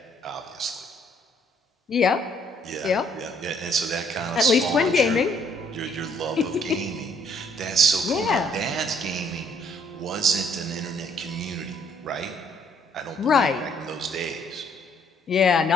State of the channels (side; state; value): both; normal; correlation 0.65